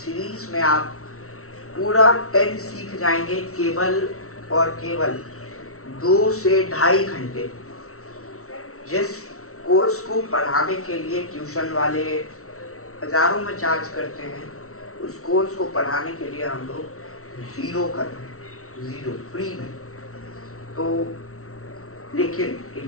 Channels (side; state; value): right; late; 0.63 ms